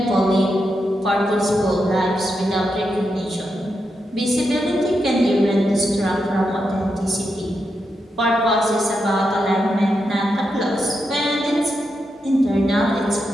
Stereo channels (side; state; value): both; normal; correlation 0.85